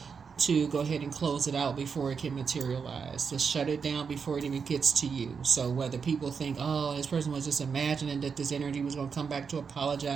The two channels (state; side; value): quieter; left; 5.9 dB